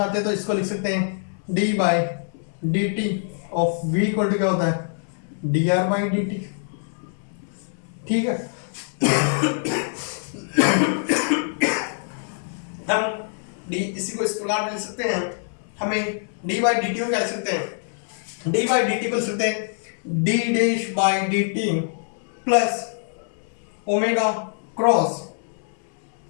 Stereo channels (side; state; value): right; silent; digital silence